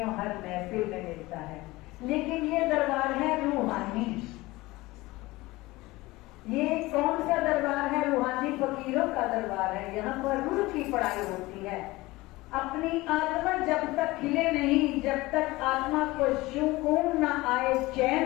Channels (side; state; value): right; quieter; 20.3 dB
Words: हर महफिल में मिलता है, लेकिन ये दरबार है रूहानी। ये कौन सा दरबार है? रूहानी फकीरों का दरबार है। यहाँ पर रूह की पढ़ाई होती है। अपनी आत्मा जब तक खिले नहीं, जब तक आत्मा को सुकून न आए,